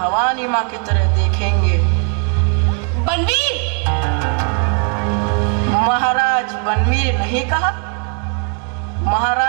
माँ की तरह देखेंगे। बनवीर, महाराज बनवीर नहीं कहा?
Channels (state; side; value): quieter; left; 38.7 dB